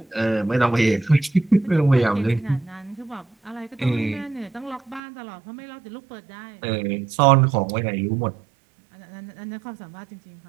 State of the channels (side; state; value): left; drops out; at 5.0 s